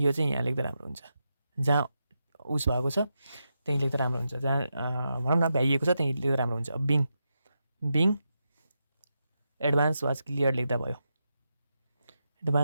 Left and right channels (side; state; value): both; inverted; correlation -0.86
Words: चाहिँ यहाँ लेख्दा राम्रो हुन्छ, जहाँ उस भएको छ त्यहीँ लेख्दा राम्रो हुन्छ, जहाँ भनौँ न भ्याइएको छ त्यहीँ लेख्दा राम्रो हुन्छ। बिङ एडभान्स वाज क्लियर लेख्दा भयो,